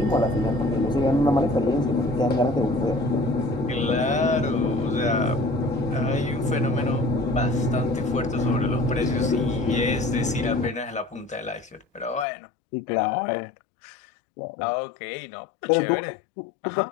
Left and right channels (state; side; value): drops out; right; at 12.2 s